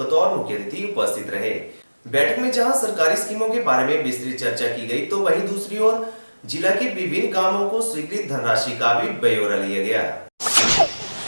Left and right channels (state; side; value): inverted; both; correlation -1.00